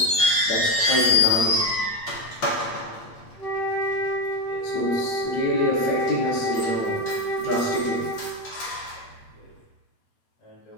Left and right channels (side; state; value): right; late; 8.5 ms